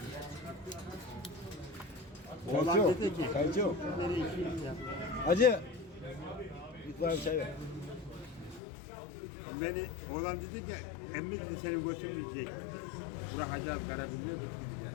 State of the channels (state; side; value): drops out; right; at 8.6 s